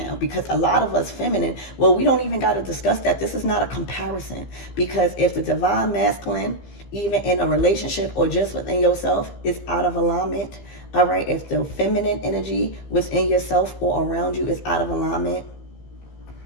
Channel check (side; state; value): right; late; 15 ms